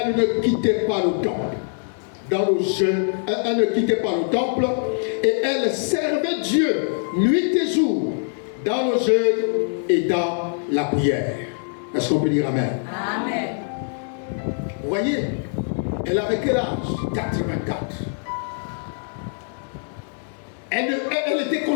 ne quittait pas le temple. Dans le jeûne, elle ne quittait pas le temple et elle servait Dieu nuit et jour dans le jeûne et dans la prière. Est-ce qu'on peut dire Amen? Amen. Vous voyez, elle avait quel âge? 84. Elle était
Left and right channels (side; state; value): right; silent; 63 dB below the other